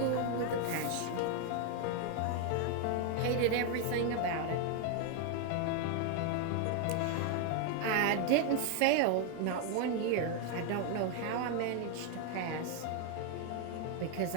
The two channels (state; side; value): different; both; correlation 0.00